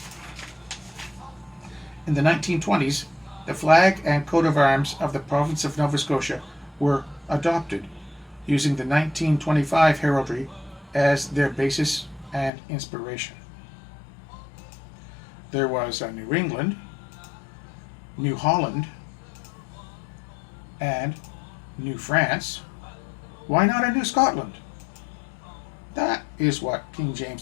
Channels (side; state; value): right; drops out; at 12.5 s